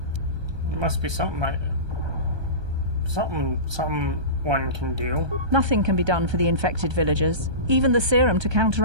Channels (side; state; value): left; late; 1.2 ms